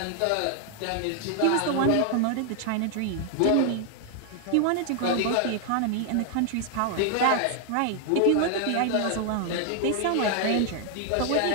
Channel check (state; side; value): different; both; correlation 0.00